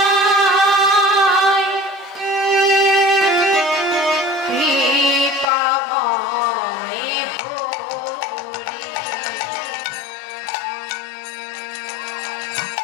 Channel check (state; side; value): drops out; right; at 5.5 s